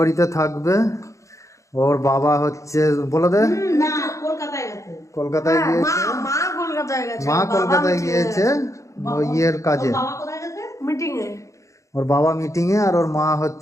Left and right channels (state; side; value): late; right; 0.15 ms